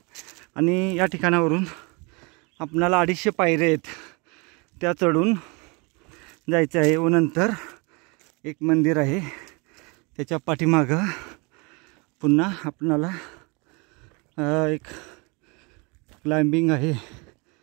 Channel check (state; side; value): quieter; left; 29.8 dB